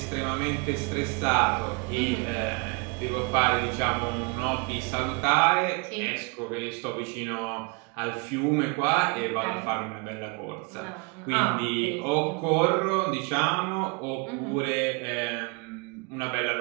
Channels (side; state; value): left; quieter; 31.5 dB